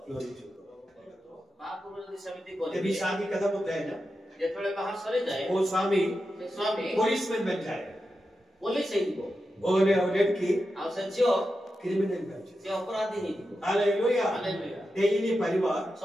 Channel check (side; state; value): both; normal; correlation 0.89